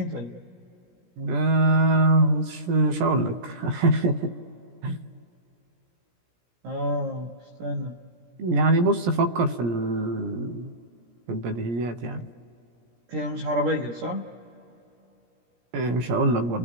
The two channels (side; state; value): left; late; 17 ms